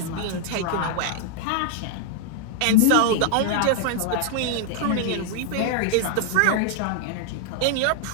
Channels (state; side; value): different; both; correlation 0.00